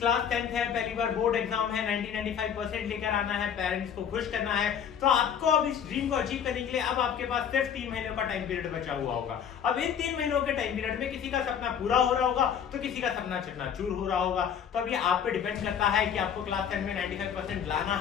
10th है, पहली बार बोर्ड एग्जाम है, 90-95% लेकर आना है, पेरेंट्स को खुश करना है। तो आपको अब इस ड्रीम को अचीव करने के लिए अब आपके पास सिर्फ 3 महीनों का टाइम पीरियड बचा हुआ होगा। अब इन 3 महीनों के टाइम पीरियड में किसी का सपना पूरा हो रहा होगा तो किसी का सपना चकनाचूर हो रहा होगा। तो अब ये आप पे डिपेंड करता है कि आपको क्लास 10 में 95% लाना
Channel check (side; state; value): right; quieter; 8.1 dB